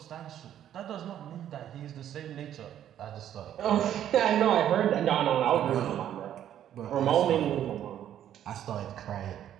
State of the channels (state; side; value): quieter; left; 10.8 dB